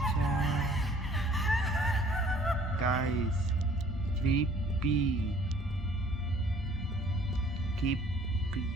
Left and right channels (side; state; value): both; normal; correlation 0.55